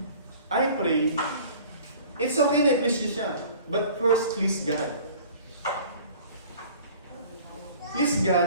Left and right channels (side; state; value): both; inverted; correlation -0.47